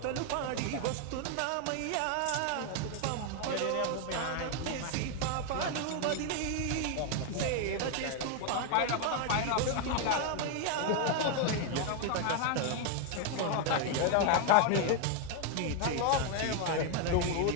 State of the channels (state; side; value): different; both; correlation 0.01